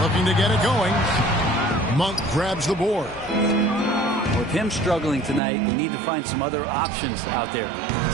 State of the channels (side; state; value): left; drops out; at 5.4 s